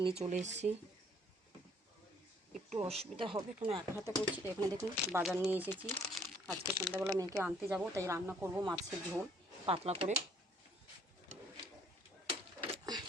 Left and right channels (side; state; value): both; normal; correlation 0.62